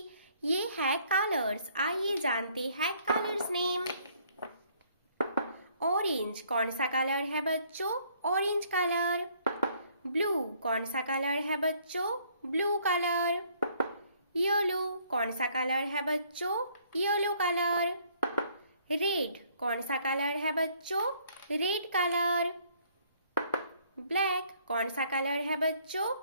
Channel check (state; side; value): inverted; both; correlation -0.64